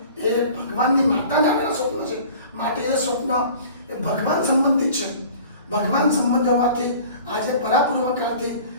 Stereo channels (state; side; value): inverted; both; correlation -0.45